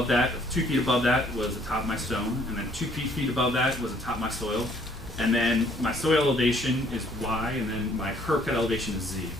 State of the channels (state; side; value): normal; both; correlation 0.62